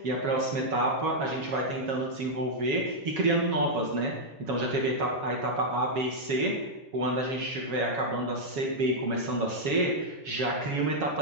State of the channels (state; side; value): late; left; 7.2 ms